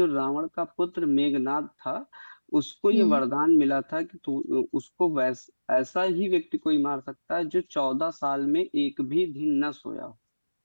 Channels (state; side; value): inverted; both; correlation -1.00